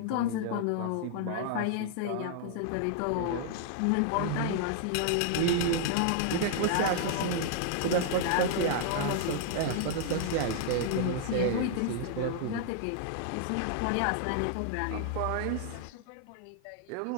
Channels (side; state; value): both; different; correlation -0.01